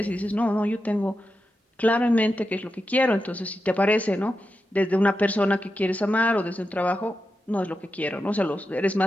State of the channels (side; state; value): both; normal; correlation 0.89